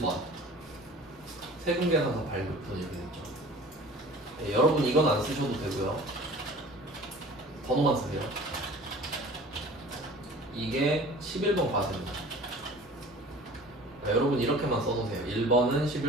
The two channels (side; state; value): both; normal; correlation 0.44